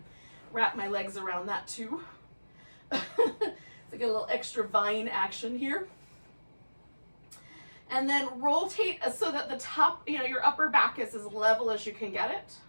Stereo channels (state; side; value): inverted; both; correlation -1.00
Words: wrap my legs around that too. So get a little extra vine action here. And then rotate so that the top, your upper back is as level as you can get it.